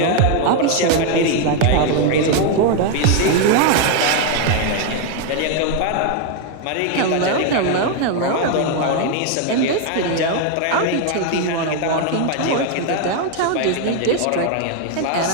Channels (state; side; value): different; both; correlation 0.01